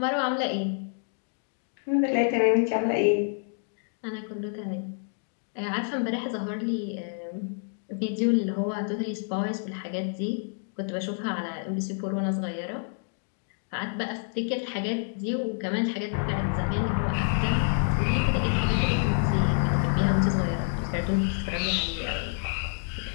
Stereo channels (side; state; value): right; silent; 59 dB below the other